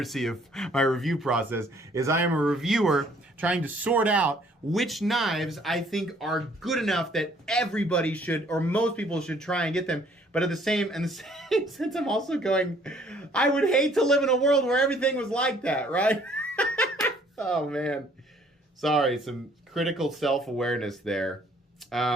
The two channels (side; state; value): both; normal; correlation 0.61